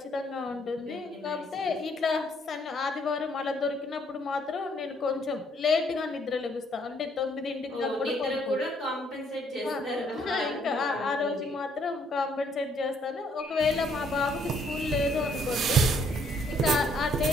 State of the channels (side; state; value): both; normal; correlation 0.67